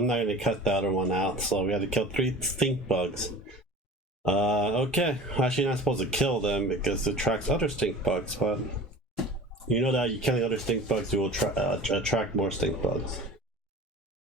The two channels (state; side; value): normal; both; correlation 0.39